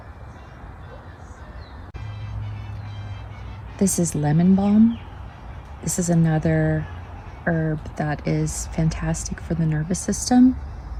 This is lemon balm. This is another herb that is fantastic for the nervous system.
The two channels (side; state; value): both; identical; correlation 1.00